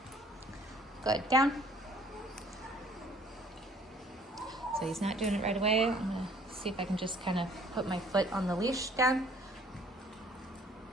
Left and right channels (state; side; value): normal; both; correlation 0.56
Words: Good, down. So he's not doing it right away. I'm gonna see if I can just kind of put my foot on the leash down.